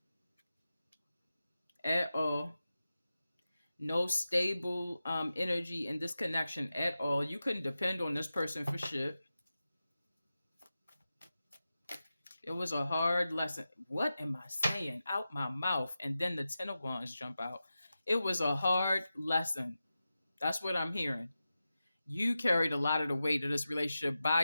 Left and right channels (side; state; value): both; inverted; correlation -0.93